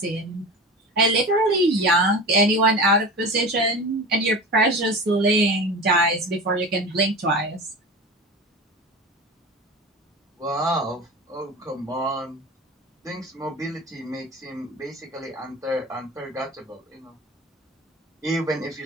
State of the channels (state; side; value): normal; both; correlation 0.33